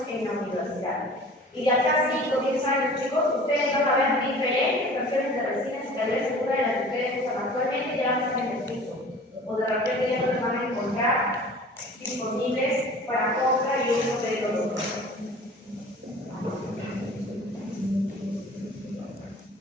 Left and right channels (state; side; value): normal; both; correlation 0.44